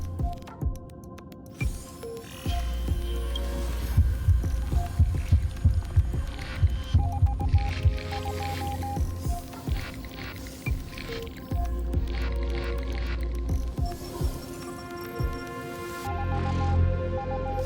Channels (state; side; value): identical; both; correlation 1.00